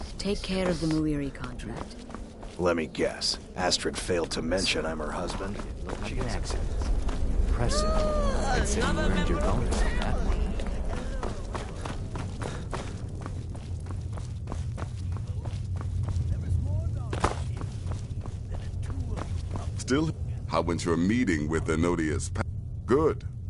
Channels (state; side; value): identical; both; correlation 1.00